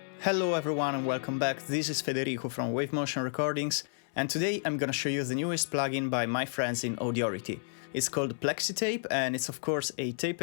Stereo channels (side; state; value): right; silent; 57 dB below the other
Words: Hello everyone and welcome back, this is Federico from Wave Motion Recordings, and today I'm gonna show you the newest plugin by my friends in Audiority. It's called PlexiTape and it's of course a tape